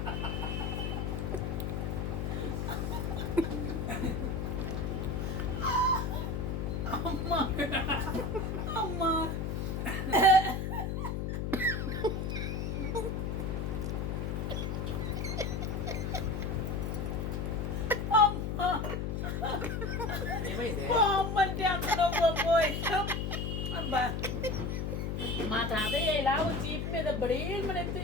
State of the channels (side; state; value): left; noise; hum, 1 dB below the sound